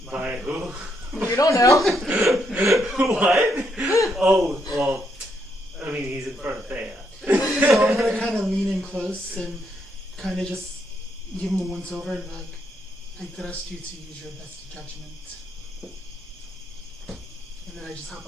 By who? You don't know. What? Oh, well, I mean, he's in front of Thea. So I'm gonna kind of lean in close and kind of just give him a once over and be like, I trust you to use your best judgment. And then I just hop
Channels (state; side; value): normal; both; correlation 0.76